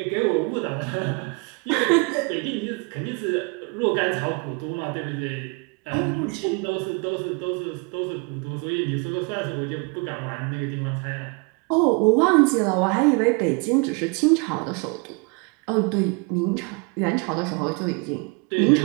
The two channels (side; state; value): left; quieter; 31.2 dB